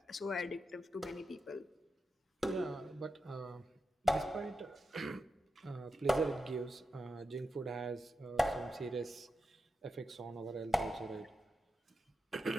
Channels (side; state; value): both; normal; correlation 0.89